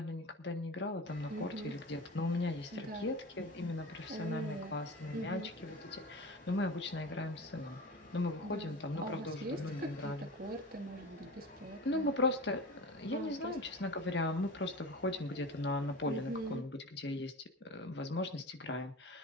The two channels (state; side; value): normal; both; correlation 0.32